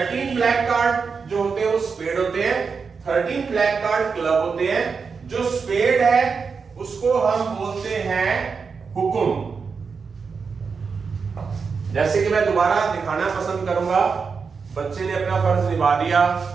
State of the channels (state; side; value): quieter; left; 5.3 dB